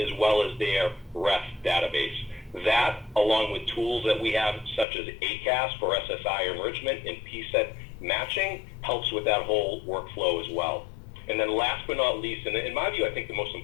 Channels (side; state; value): right; drops out; at 4.9 s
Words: well as their ref database. That, along with tools that we have, such as ACAS for SSI enrichment and PSET matching, helps with that whole workflow as well. And then last but not least, and in my view, I think the most